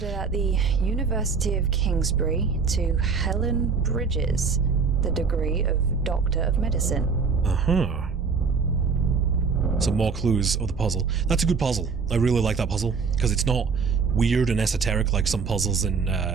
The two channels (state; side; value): quieter; left; 5.3 dB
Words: at the University of Kingsbury to Helen Bridges, the degree of Doctor of Medicine. Uh-huh. Some more clues of the puzzle. That's a good puzzle. I really like that puzzle, because it's not weird and esoteric like some puzzles in